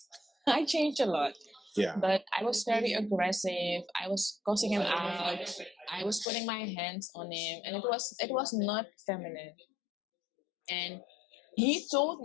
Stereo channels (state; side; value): drops out; right; at 6.2 s